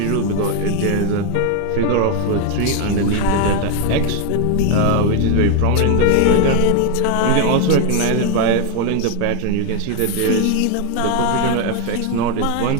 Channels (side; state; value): both; different; correlation 0.01